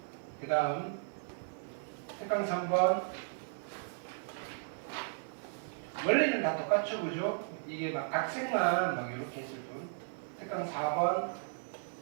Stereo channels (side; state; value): left; silent; 54 dB below the other